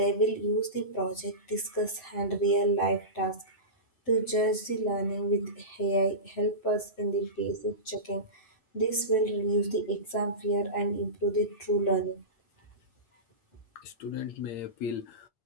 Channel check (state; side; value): late; right; 7.8 ms